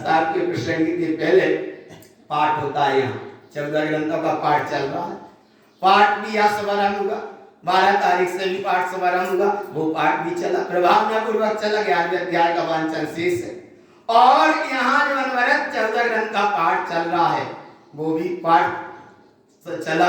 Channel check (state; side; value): identical; both; correlation 1.00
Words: के प्रसंग के पहले पाठ होता है। यहाँ 14 ग्रंथों का पाठ चल रहा है। पाठ भी यहाँ शुभारंभ हुआ, 12 तारीख से भी पाठ शुभारंभ हुआ, वो पाठ भी चला, प्रभावना पूर्वक चला। 11वें अध्याय का वांचन शेष है, और यहाँ जो अनवरत 14 ग्रंथ का पाठ चल रहा है वो भी पाठ